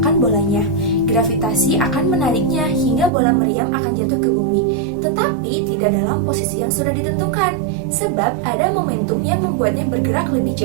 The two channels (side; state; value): left; drops out; at 3.1 s